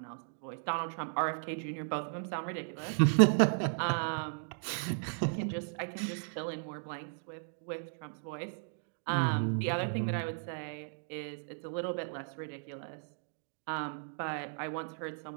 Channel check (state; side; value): silent; left; digital silence